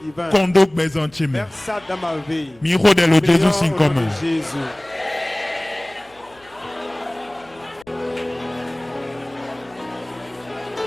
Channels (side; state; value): left; noise; hum, 29 dB below the sound